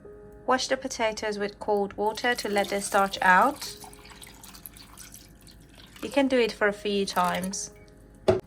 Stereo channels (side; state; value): both; identical; correlation 1.00